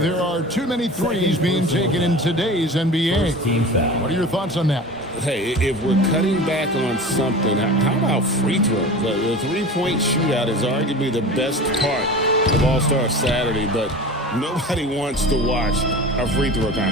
are too many threes being taken in today's NBA. Team foul. What are your thoughts on that? Hey, if we're cutting back on something, how about free throw? The three-point shootout is arguably the best part of All-Star Saturday, but nobody wants to watch a free throw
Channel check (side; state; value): both; normal; correlation 0.35